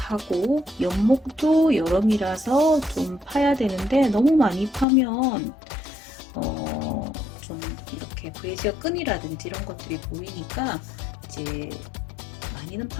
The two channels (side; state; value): right; drops out; at 4.9 s